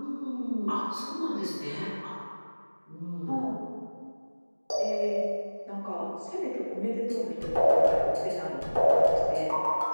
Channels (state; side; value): inverted; both; correlation -1.00